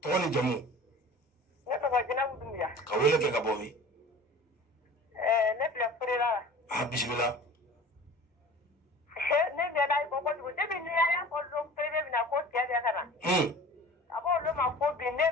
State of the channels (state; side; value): normal; both; correlation 0.41